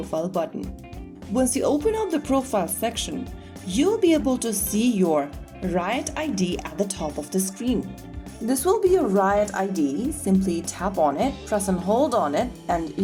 button. Once you open up the profile section, you'll be able to see your Riot ID at the top of the screen. This will be your Riot ID. Simply tap on it, press and hold on it, and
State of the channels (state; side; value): identical; both; correlation 1.00